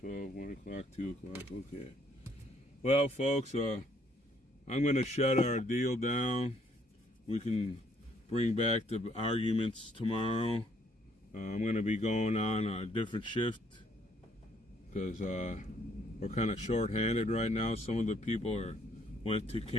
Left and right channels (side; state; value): both; normal; correlation 0.67